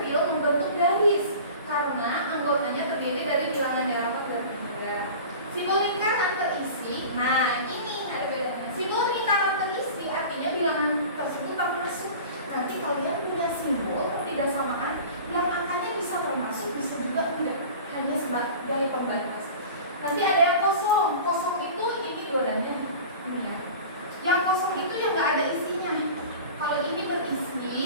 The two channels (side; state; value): both; inverted; correlation -0.38